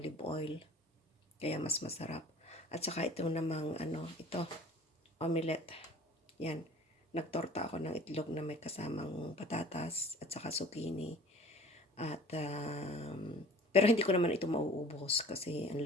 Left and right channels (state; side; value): normal; both; correlation 0.47